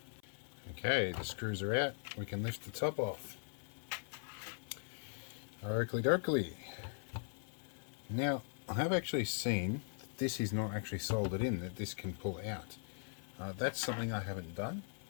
Okay, the screws are out. We can lift the top off. Oakley dokley. Now, I have actually seen that this is not actually soldered in, that this can pull out. That's something I haven't done,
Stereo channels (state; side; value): silent; right; 51 dB below the other